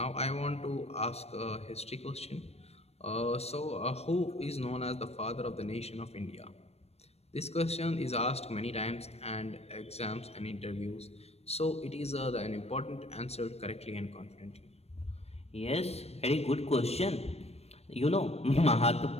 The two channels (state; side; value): late; right; 0.30 ms